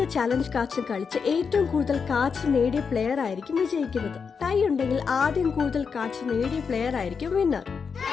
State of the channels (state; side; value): quieter; right; 5.8 dB